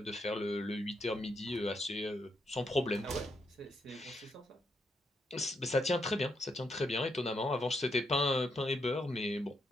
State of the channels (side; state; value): both; normal; correlation 0.79